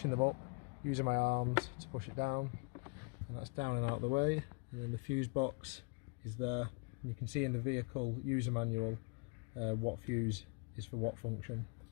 them up using my arms to push it down, and that's down and out of the way. And then the fuse box is there, and you can see in the vehicle user manual what fuse is for what function.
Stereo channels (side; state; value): right; quieter; 33.1 dB